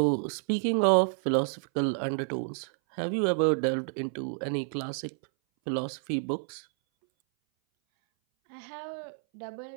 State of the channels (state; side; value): silent; left; 58 dB below the other